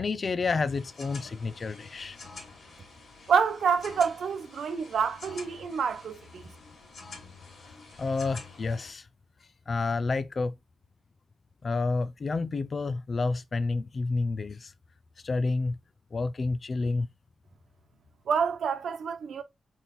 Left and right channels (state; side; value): normal; both; correlation 0.83